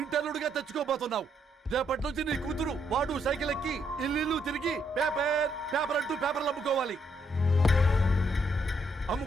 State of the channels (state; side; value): normal; both; correlation 0.74